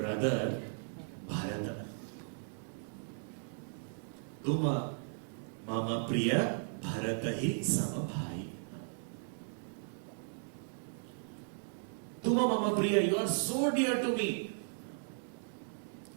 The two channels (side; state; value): left; silent; digital silence